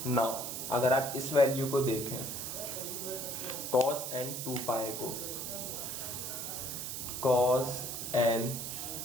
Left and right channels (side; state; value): right; noise; hiss, 5 dB below the sound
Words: Now अगर आप इस value को देखें cos n 2 पाई को, cos n